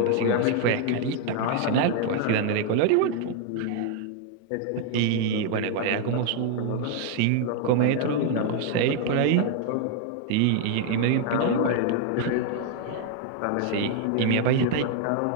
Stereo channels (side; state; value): both; different; correlation 0.00